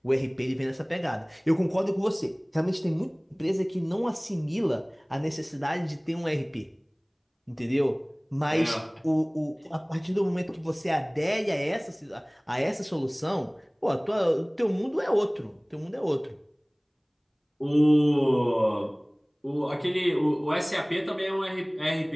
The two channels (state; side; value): identical; both; correlation 1.00